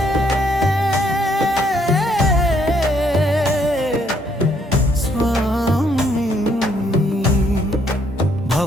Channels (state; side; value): normal; both; correlation 0.70